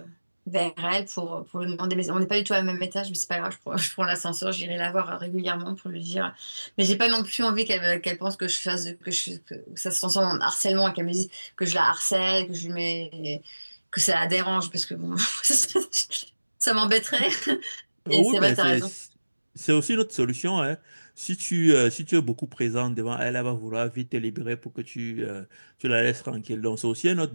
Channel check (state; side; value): inverted; both; correlation -1.00